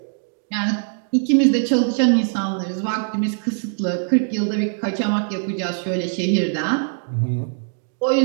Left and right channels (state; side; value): silent; left; digital silence